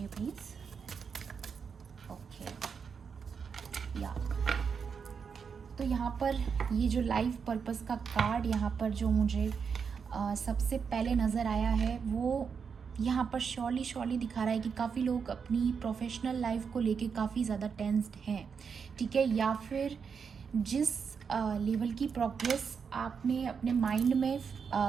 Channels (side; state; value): left; quieter; 6.2 dB